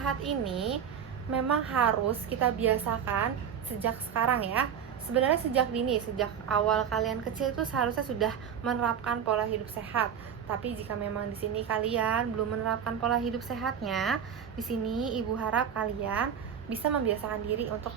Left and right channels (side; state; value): left; quieter; 8.1 dB